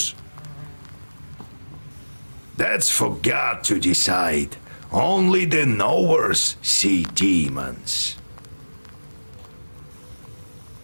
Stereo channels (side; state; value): both; inverted; correlation -1.00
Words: That's for God to decide. Only the knowers see demons.